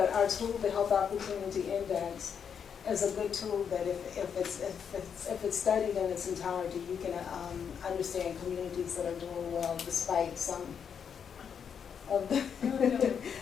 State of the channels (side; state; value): right; quieter; 7.3 dB